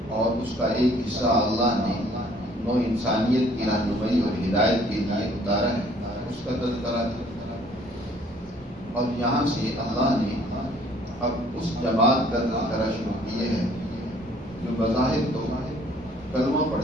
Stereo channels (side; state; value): both; normal; correlation 0.58